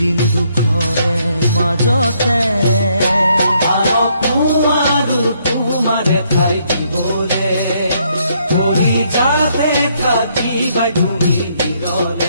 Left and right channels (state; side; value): inverted; both; correlation -0.71